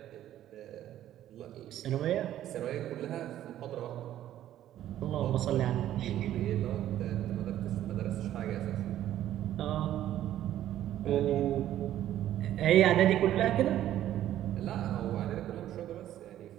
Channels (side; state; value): left; quieter; 12.3 dB